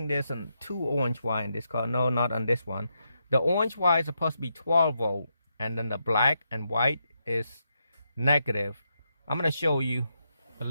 there's 2 orange wire in this car. No, not on this one. The orange wire is supposed to be 12 volt, and then the black and white is negative. I'm gonna show you a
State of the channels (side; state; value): both; inverted; correlation -0.82